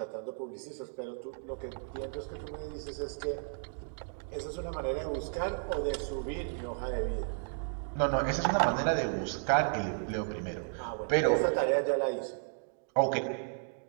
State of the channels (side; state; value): left; silent; digital silence